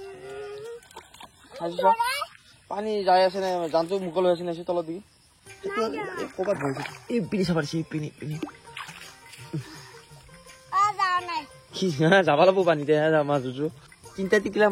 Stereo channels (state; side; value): identical; both; correlation 1.00